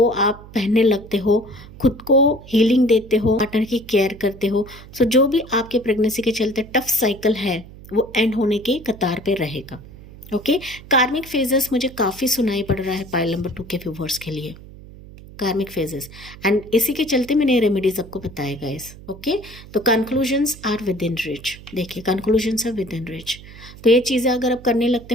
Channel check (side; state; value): right; noise; hum, 18 dB below the sound